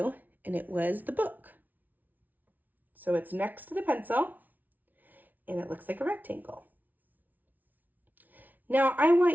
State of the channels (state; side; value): late; left; 0.080 ms